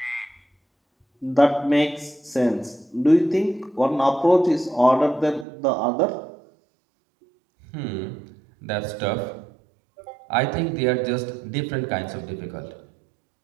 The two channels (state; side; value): drops out; left; at 5.5 s